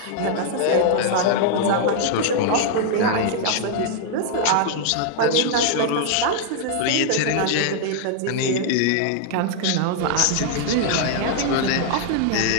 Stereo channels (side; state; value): both; different; correlation -0.01